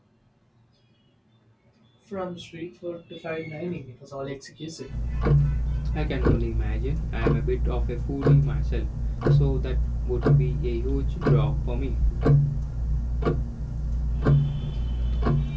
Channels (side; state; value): both; identical; correlation 1.00